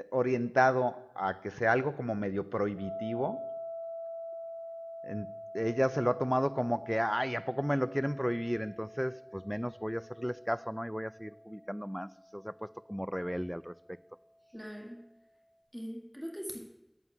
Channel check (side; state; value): both; identical; correlation 1.00